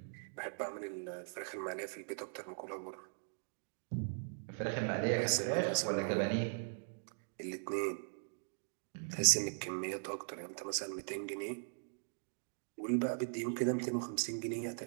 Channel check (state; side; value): silent; left; digital silence